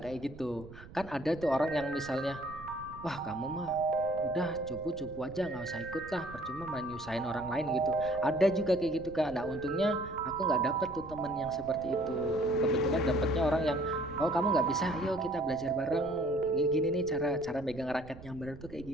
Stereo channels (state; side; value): noise; right; rumble, 17 dB below the sound